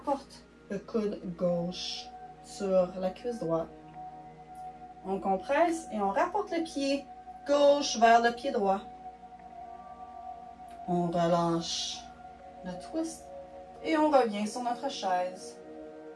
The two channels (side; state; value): both; identical; correlation 1.00